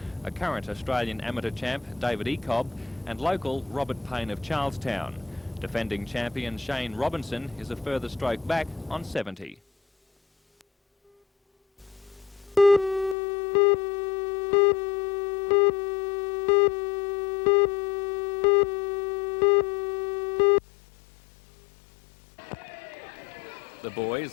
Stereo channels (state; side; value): drops out; right; at 13.2 s